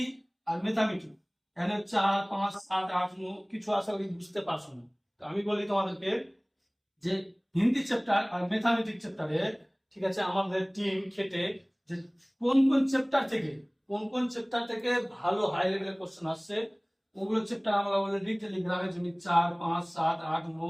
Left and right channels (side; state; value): both; identical; correlation 1.00